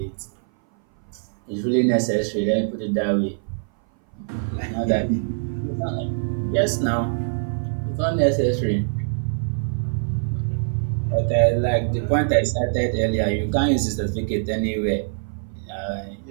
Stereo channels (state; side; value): silent; left; 58 dB below the other